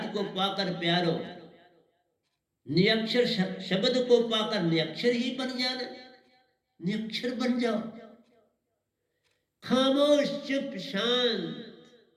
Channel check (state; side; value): identical; both; correlation 1.00